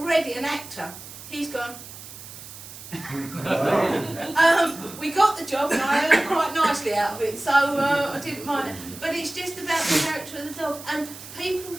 an actor. He's gone. We got the job, and I earned quite nicely out of it, so I didn't mind it. But it's just about the character of the dog, and people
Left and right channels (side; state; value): right; noise; hiss, 14 dB below the sound